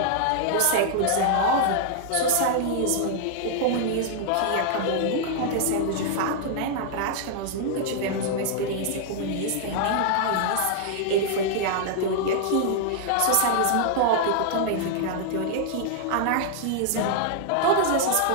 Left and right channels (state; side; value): different; both; correlation -0.01